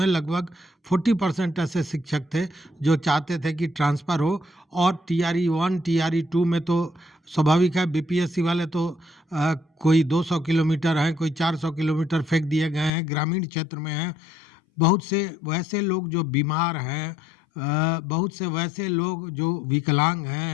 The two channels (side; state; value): right; drops out; at 12.9 s